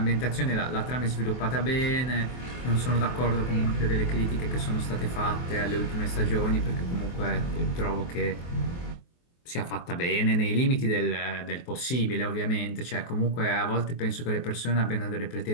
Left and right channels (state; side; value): late; right; 23 ms